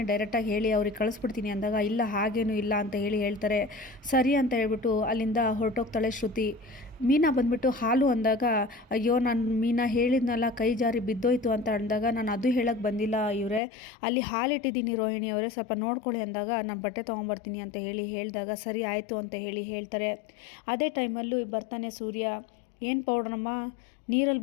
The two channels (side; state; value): right; drops out; at 13.6 s